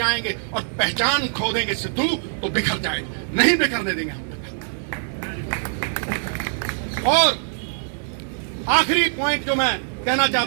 और पहचान खो देंगे सिद्धू तो बिखर जाएंगे, नहीं बिखरने देंगे हम। और आखिरी पॉइंट जो मैं कहना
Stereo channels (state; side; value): silent; left; digital silence